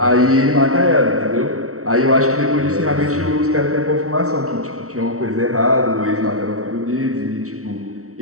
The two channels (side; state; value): left; late; 0.64 ms